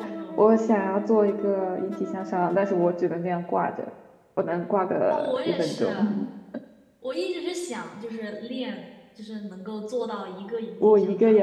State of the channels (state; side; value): identical; both; correlation 1.00